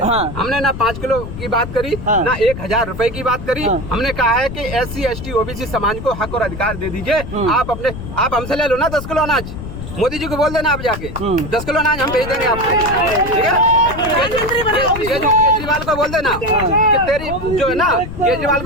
हमने ना 5 किलो की बात करी, ना 1000 रुपए की बात करी। हमने कहा है कि SC ST OBC समाज को हक और अधिकार दे दीजिए। आप हमसे ले लो ना 10 किलो अनाज, मोदी जी को बोल देना आप जाके 10 किलो अनाज हम भेज देंगे आपको, ठीक है? केजरीवाल को बोल देना कि तेरी जो है ना, केजरीवाल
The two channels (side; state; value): left; noise; rumble, 9 dB below the sound